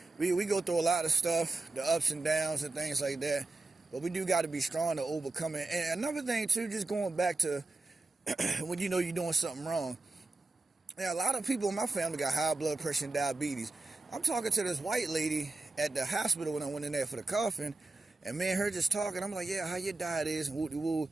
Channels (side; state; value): left; quieter; 3.3 dB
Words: We go through a lot of stuff, the ups and downs and things like that. But we do got to be strong to overcome it. And another thing too, just going back to when you're doing something wrong. Yeah, a lot of people in my family got high blood pressure and diabetes. I'm talking to this white lady at the hospital when I went in there for the coffin. And me and her just talking, I'm like, yeah, how your diet is, and woo-de-woo.